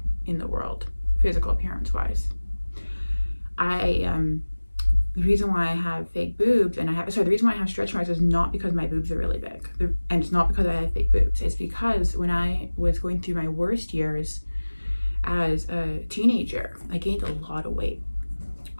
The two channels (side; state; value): both; inverted; correlation -1.00